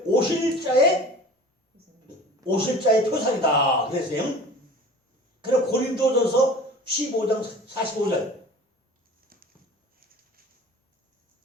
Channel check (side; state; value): both; normal; correlation 0.42